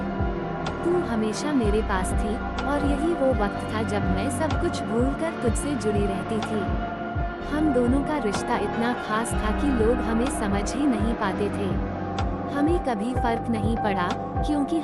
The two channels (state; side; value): identical; both; correlation 1.00